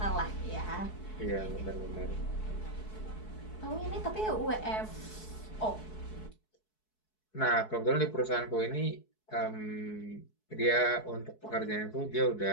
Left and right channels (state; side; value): late; right; 4.7 ms